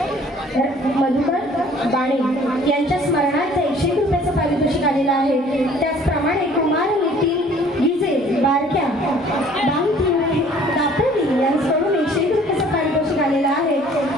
बाणे यांच्या स्मरणार्थ 101 रुपयाचं पारितोषिक आलेलं आहे. त्याचप्रमाणे कुमार नितीन गिजे बारक्या दापोली यांच्याकडून 101 रुपयाचं पारितोषिक आलेलं आहे.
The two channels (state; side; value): normal; both; correlation 0.54